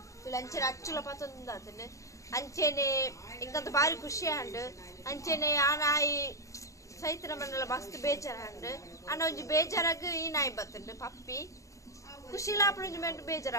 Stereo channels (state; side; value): late; right; 0.15 ms